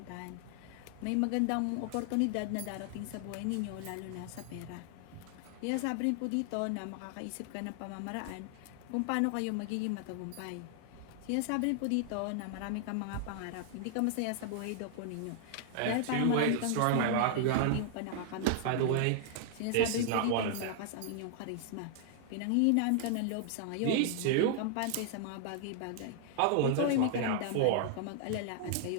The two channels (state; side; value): different; both; correlation 0.00